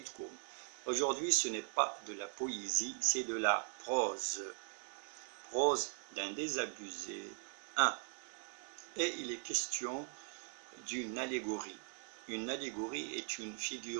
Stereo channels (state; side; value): silent; left; 51 dB below the other